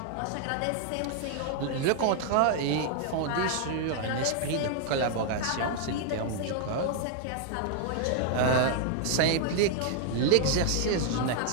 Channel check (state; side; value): different; both; correlation 0.00